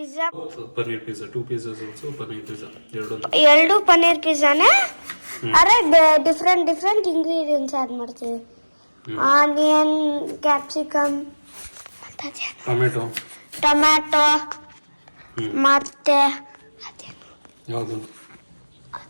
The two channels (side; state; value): both; inverted; correlation -1.00